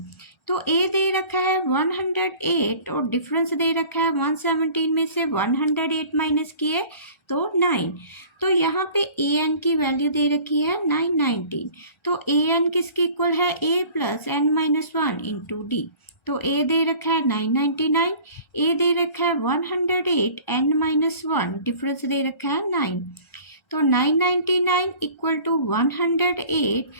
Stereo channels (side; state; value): right; late; 1.3 ms